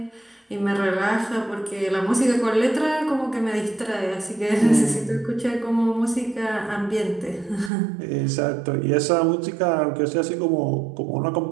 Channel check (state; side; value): drops out; left; at 7.7 s